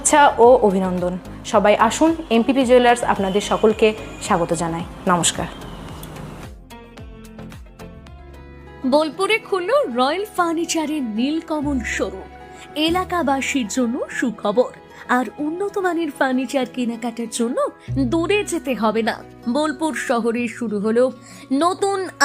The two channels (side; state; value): both; identical; correlation 1.00